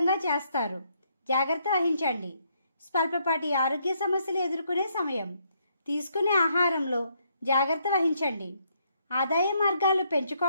చేస్తారు. జాగ్రత్త వహించండి. స్వల్పపాటి ఆరోగ్య సమస్యలు ఎదుర్కొనే సమయం. తీసుకునే ఆహారంలో జాగ్రత్త వహించండి. ఆదాయ మార్గాలు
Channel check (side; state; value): both; inverted; correlation -0.73